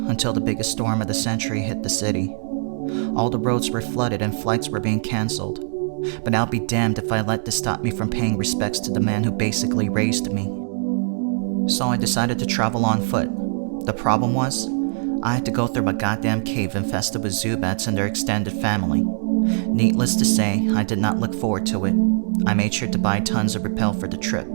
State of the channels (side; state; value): left; silent; digital silence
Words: until the biggest storm of the century hit the city. All the roads were flooded and flights were being cancelled. But I'll be damned if I let this stop me from paying respects to the man who basically raised me. So I decided to travel on foot. The problem was, I had to go through a goddamn cave infested with Zubats and their extended family. Needless to say, I did not look forward to it. I made sure to buy tons of Repel for the trip.